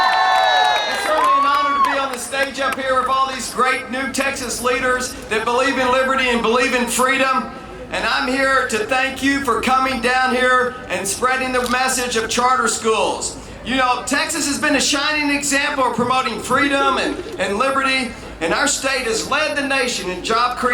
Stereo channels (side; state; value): both; identical; correlation 1.00